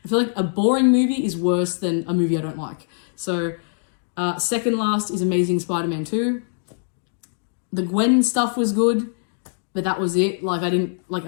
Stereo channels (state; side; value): silent; right; digital silence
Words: I feel like a boring movie is worse than a movie I don't like. So second last is Amazing Spider-Man 2. The Gwen stuff was good, but that was it. Like, I didn't, like,